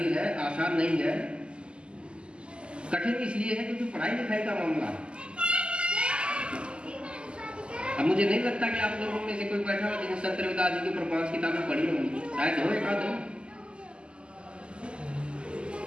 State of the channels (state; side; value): late; left; 0.051 ms